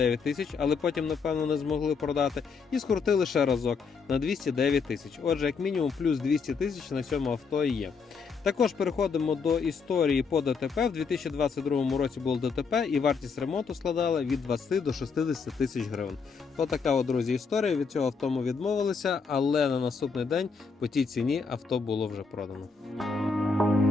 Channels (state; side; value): quieter; right; 5.2 dB